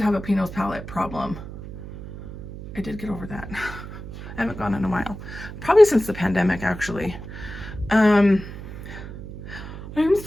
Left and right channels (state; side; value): noise; right; hum, 11 dB below the sound